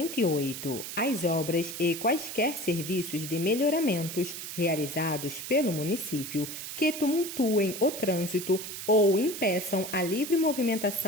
As obras e quaisquer serviços de melhoramentos realizados pelo município que tumultuem o trânsito ou impeçam a livre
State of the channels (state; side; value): noise; right; hiss, 8 dB below the sound